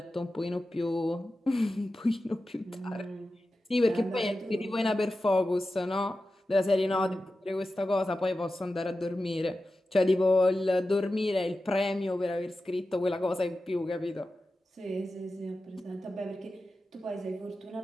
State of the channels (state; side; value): normal; both; correlation 0.93